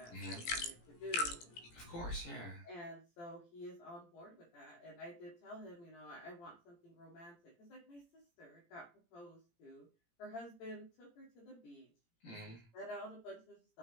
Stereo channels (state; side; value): late; right; 17 ms